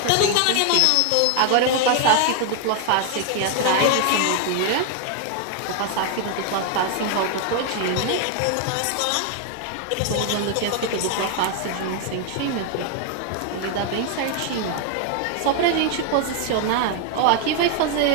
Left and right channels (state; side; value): different; both; correlation 0.00